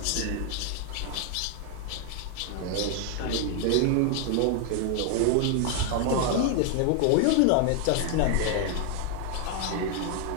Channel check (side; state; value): both; different; correlation 0.00